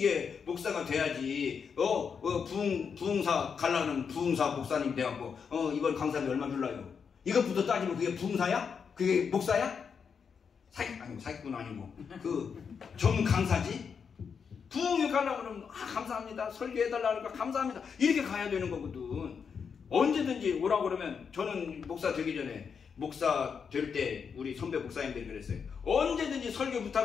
목사가 돼야지. 부흥사 가려는 부흥사 목사님 돼갖고 이번 강사비 얼마 줄라요? 이것부터 따지면 그게 부흥사야? 그게 목사야? 사기꾼 아니고 전 강사지? 부흥회 가려고 그러면 감사합니다. 설교해달라 하니까 감사합니다. 이렇게 가야 되는 거거든. 언제든지 오라고 그러면 저는 목사 되기 전에 목사 될 때 우리 선배 목사님들이 그랬어요. 언제든지 설교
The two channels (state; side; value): quieter; right; 6.4 dB